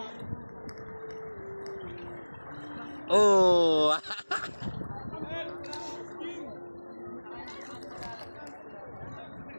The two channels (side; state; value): both; inverted; correlation -1.00